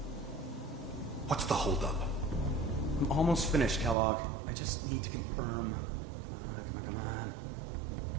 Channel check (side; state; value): left; drops out; at 4.0 s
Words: What's the holdup? I'm almost finished, Kellogg. I just need to confirm. Come on.